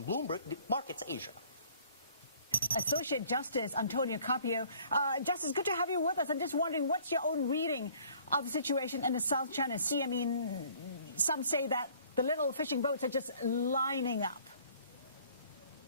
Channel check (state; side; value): inverted; both; correlation -0.56